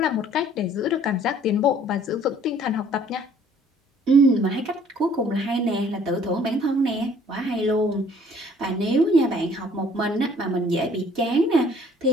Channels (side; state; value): both; normal; correlation 0.57